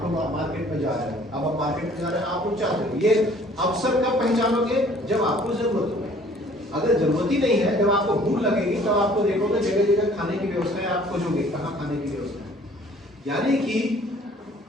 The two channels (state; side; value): normal; both; correlation 0.55